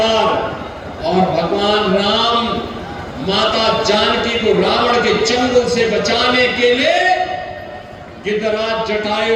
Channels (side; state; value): both; identical; correlation 1.00